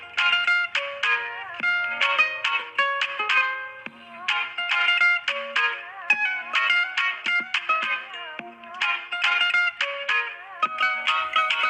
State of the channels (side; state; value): both; identical; correlation 1.00